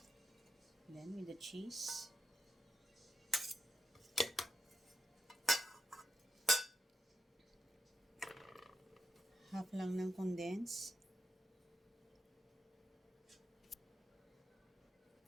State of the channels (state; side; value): normal; both; correlation 0.85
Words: And then with the cheese. Half lang ng condense.